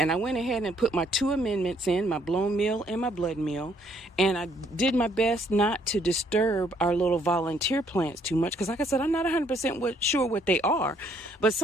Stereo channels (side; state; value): both; normal; correlation 0.67